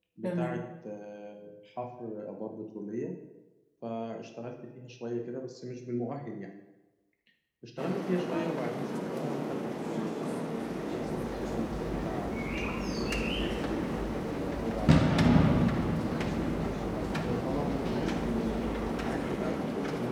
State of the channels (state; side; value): identical; both; correlation 1.00